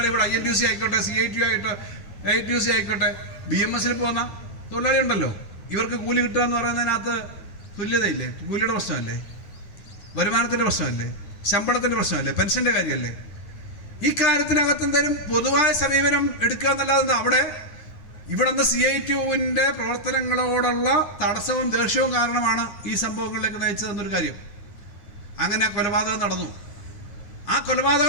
ഇവിടെ INTUC ആയിക്കോട്ടെ, CITU ആയിട്ട് AITUC ആയിക്കോട്ടെ, BMS പോകുന്ന തൊഴിലാളി ഉണ്ടല്ലോ, ഇവർക്ക് കൂലി കിട്ടുക എന്ന് പറയുന്നതിനകത്ത് തുല്യതയില്ലേ? കൂലിയുടെ പ്രശ്നമല്ലേ? വരുമാനത്തിൻ്റെ പ്രശ്നമല്ലേ, ശമ്പളത്തിൻ്റെ പ്രശ്നമല്ലേ, പെൻഷൻ്റെ കാര്യമല്ലേ? ഈ കാര്യത്തിനകത്ത് എന്തായാലും പൊതുവായ സമീപനം എടുക്കുക എന്നല്ലാതെ ഇവിടെ നിന്ന് CITUവിൻ്റെ പ്രവർത്തനങ്ങളോടുള്ള തടസ്സവും ദേഷ്യവും കാരണമാണ് ഈ സംഭവങ്ങളിലേക്ക് നയിച്ചതെന്നൊരു കാര്യം. അങ്ങനെ കൊലപാതകം നടന്നു. ആ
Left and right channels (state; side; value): late; right; 9.8 ms